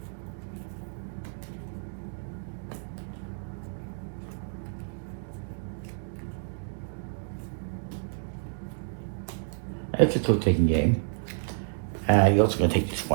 It's a trick-taking game. You're also going to take these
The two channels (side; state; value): left; silent; digital silence